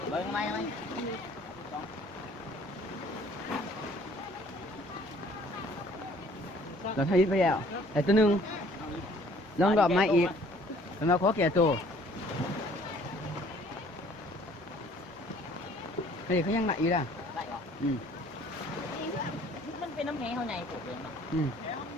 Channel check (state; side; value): normal; both; correlation 0.56